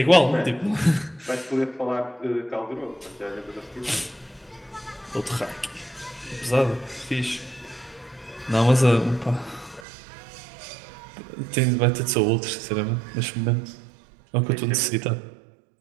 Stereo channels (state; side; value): drops out; left; at 9.9 s